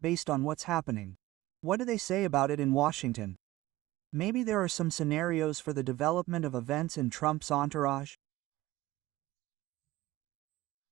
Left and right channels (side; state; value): left; quieter; 17.4 dB